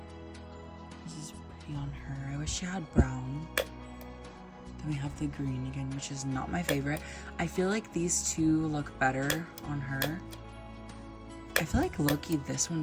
This is pretty on her. I wish she had brown. Then we have the green again, which is not my favorite. I feel like these two look better on her. I feel like low-key this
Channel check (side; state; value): both; identical; correlation 1.00